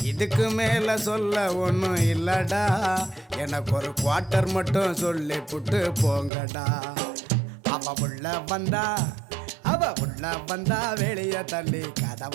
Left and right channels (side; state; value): left; drops out; at 6.3 s